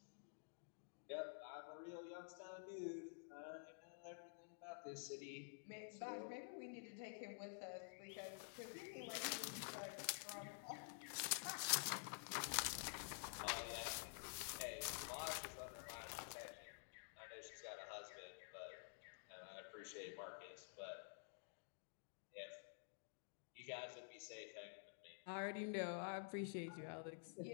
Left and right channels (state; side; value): silent; right; digital silence